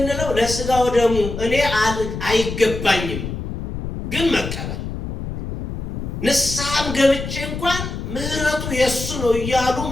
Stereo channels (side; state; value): left; noise; rumble, 6 dB below the sound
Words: ለስጋው ደሙ እኔ አይገባኝም ግን መቀበል፣ ንስሐም ገብቼ እንኳን ምህረቱ የሱ ነው እያሉ